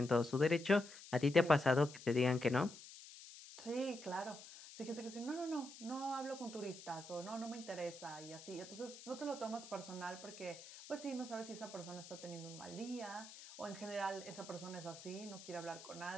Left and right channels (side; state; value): left; noise; hiss, 15 dB below the sound